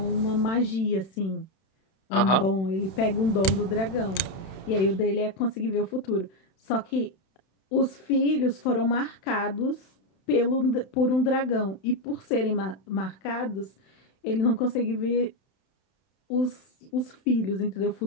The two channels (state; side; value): late; right; 31 ms